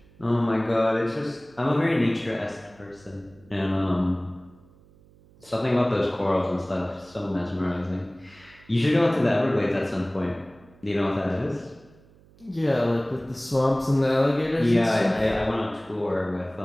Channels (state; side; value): noise; right; hum, 27 dB below the sound